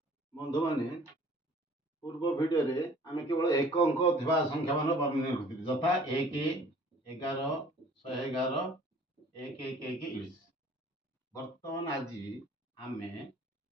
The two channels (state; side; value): normal; both; correlation 0.52